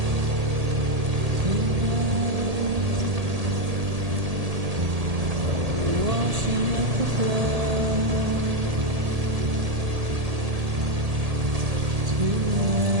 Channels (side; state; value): left; late; 1.8 ms